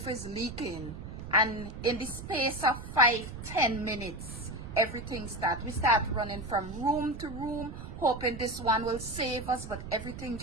is leaking." And in the space of 5-10 minutes, everything we start running from room to room, hoping this one will save us, but everything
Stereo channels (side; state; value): right; noise; rumble, 10 dB below the sound